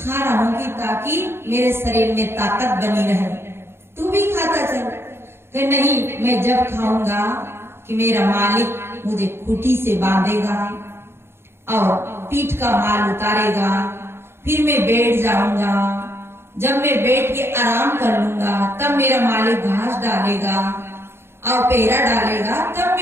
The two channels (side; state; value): left; late; 0.12 ms